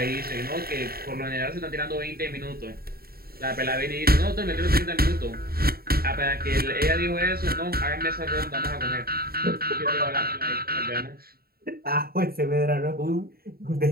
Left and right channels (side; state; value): left; late; 0.44 ms